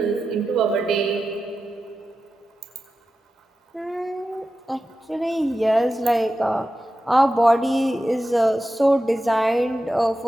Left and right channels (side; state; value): both; normal; correlation 0.92